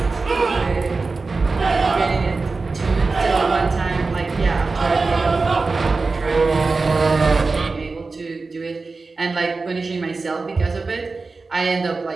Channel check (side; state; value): left; quieter; 3.9 dB